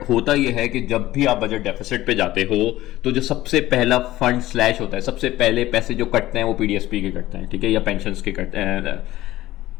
होता ये है कि जब भी आप बजट डेफिसिट पे जाते हो तो जो सबसे पहला फंड स्लैश होता है, सबसे पहले पैसे जो कटते हैं वो PDSP के कटते हैं, ठीक है, या पेंशंस के कटते हैं,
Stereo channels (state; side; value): quieter; right; 15.8 dB